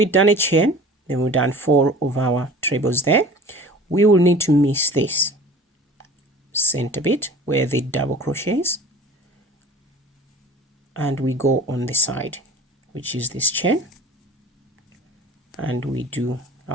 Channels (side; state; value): both; normal; correlation 0.44